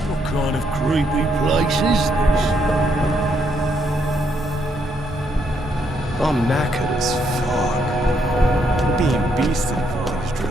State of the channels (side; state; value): both; normal; correlation 0.74